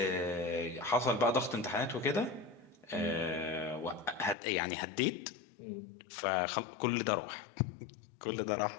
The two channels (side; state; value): right; drops out; at 4.4 s